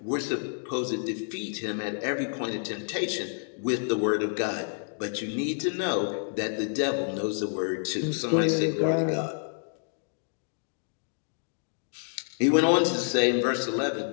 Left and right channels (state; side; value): silent; right; digital silence